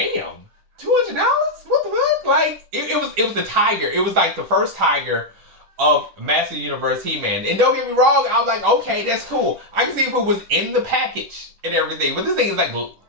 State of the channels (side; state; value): left; late; 10 ms